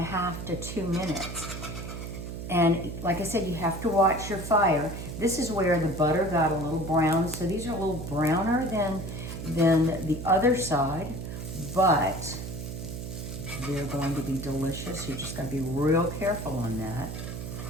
to 2 minutes. And like I said, you have to watch your fire. This is where the butter got a little brown. So these are a little browner than the other side, but they're going to be delicious. You just got to be real careful on that.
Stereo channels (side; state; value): right; noise; hum, 7 dB below the sound